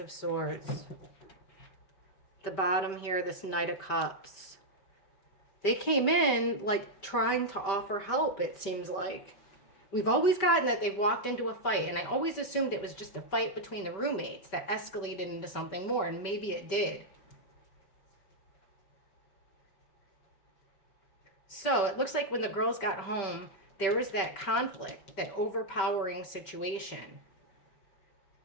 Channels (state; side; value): late; right; 5.1 ms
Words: Swords. The bottom here, this Knight of Cups. They came in like trying to offer help, it seems like. We've always gotten that they've walked into a fight, and I always assumed it was just a fight between the roommates that escalated into something more, and maybe it did. So it looks like when the girls got home, there was that conflict, that overpowering situation